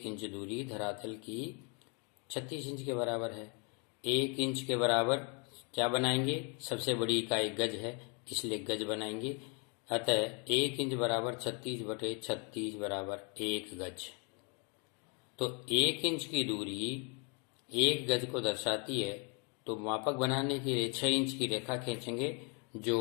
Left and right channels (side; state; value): right; quieter; 35.0 dB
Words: इंच दूरी धरातल की 36 इंच के बराबर है। 1 इंच के बराबर क्या बनाएंगे? सबसे बड़ी इकाई गज है, इसलिए गज बनाएंगे। अतः 1 इंच बराबर 36/36 बराबर 1 गज। तो 1 इंच की दूरी 1 गज को दर्शाती है, तो मापक बनाने के लिए 6 इंच की रेखा खींचेंगे जो